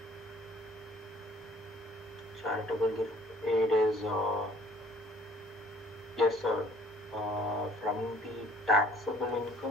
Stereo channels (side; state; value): both; normal; correlation 0.57